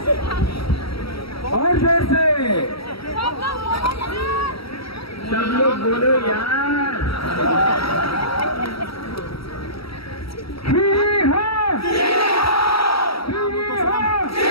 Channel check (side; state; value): right; late; 0.75 ms